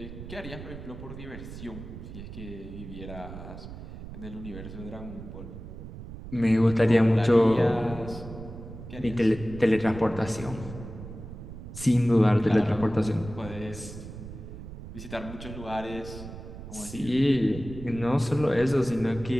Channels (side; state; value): right; noise; rumble, 12 dB below the sound